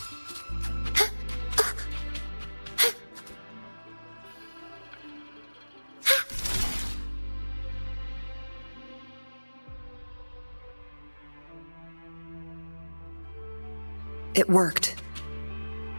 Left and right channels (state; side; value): inverted; both; correlation -1.00